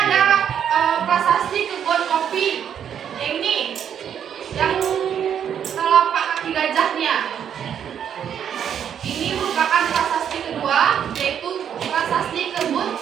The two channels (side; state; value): left; quieter; 8.8 dB